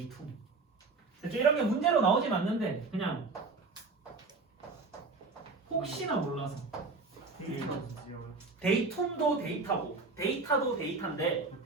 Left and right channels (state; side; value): quieter; left; 4.0 dB